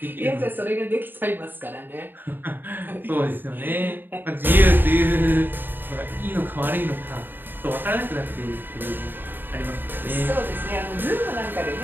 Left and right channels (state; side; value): late; left; 0.094 ms